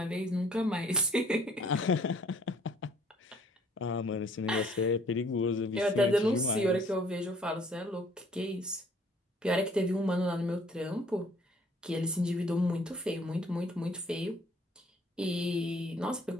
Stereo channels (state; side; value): normal; both; correlation 0.57